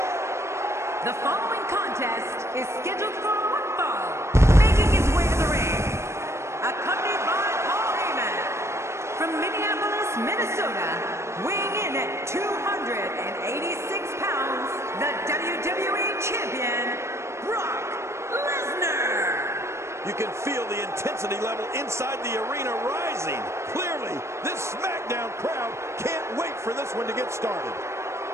The following contest is scheduled for one fall. Making his way to the ring, accompanied by Paul Heyman. From Minneapolis, Minnesota, weighing in at 286 pounds, the WWE Champion, Brock Lesnar. You can feel the intensity level inside the arena rising. Clearly, this SmackDown crowd can't wait for this one to get started.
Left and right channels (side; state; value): left; late; 0.13 ms